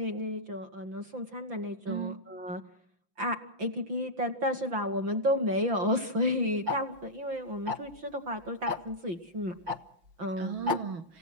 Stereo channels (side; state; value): left; late; 5.9 ms